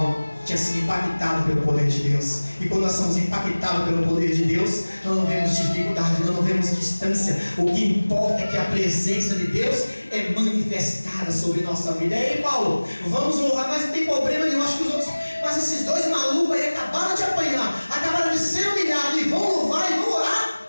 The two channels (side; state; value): both; inverted; correlation -1.00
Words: tinha sido impactado pelo poder de Deus. E quando nós somos impactados pelo poder de Deus, nós não vemos dificuldade, nós não vemos distância. O que importa é que a presença de Deus é manifestada sobre nossa vida. E aí, Paulo, vamos louvar, mas não tem problema nenhum. Acho que os outros, mas esses dois malucos aí acabaram de apanhar, acabaram de ser humilhados e vão louvar e vão orar.